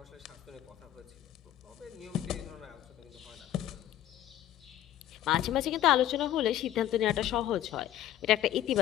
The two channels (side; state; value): right; quieter; 12.3 dB